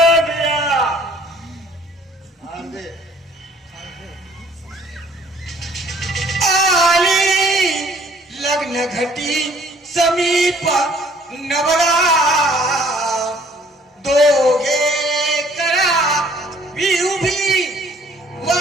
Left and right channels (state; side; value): normal; both; correlation 0.58